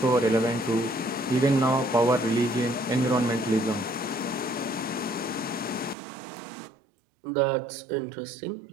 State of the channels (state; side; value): drops out; left; at 6.0 s